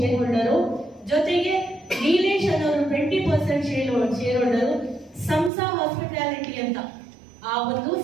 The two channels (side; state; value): left; drops out; at 5.5 s